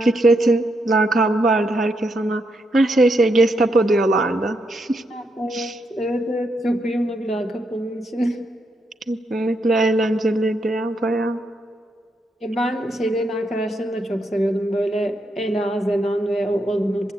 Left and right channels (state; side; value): normal; both; correlation 0.80